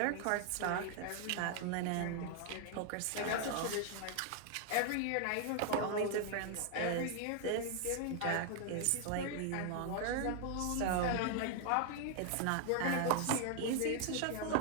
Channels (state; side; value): different; both; correlation 0.00